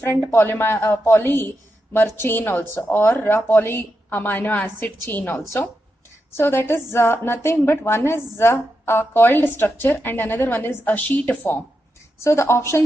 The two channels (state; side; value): normal; both; correlation 0.86